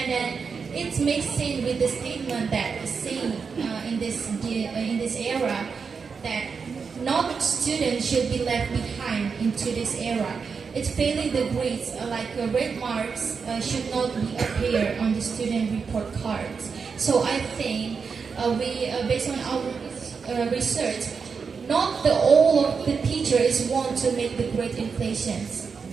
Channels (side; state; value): left; quieter; 5.5 dB